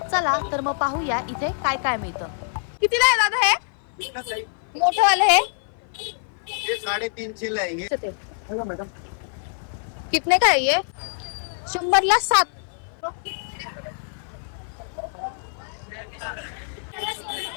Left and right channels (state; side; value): silent; right; 56 dB below the other